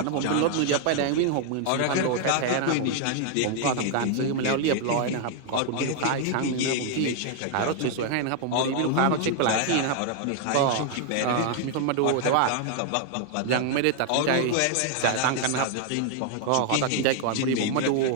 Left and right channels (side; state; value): both; different; correlation 0.00